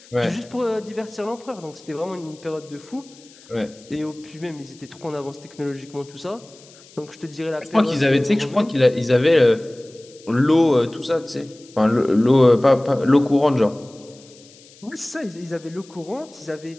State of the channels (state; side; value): noise; left; hiss, 24 dB below the sound